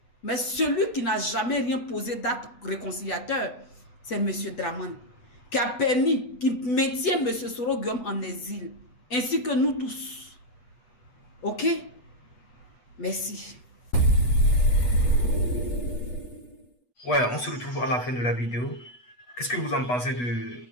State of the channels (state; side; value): late; right; 8.2 ms